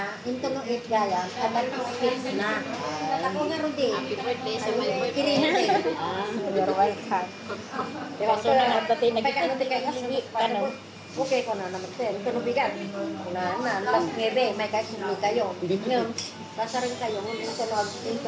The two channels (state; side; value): identical; both; correlation 1.00